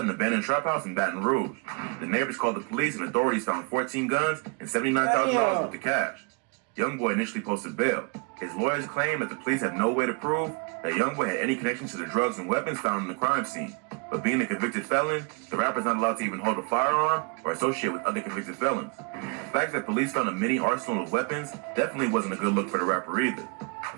an abandoned trap house in Baton Rouge. The neighbors called the police and authorities found 14 guns and $79,000 worth of cash. Youngboy initially posted bail. His lawyers claim that the police have no way to prove that Youngboy had any connection to the drugs and weapons found in the crime scene. But being a convicted felon, the rapper's not allowed to even hold a firearm or associate with other convicted felons. The fact that police found a mini arsenal of weapons definitely wasn't a good look for the rapper either.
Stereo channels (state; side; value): quieter; left; 35.1 dB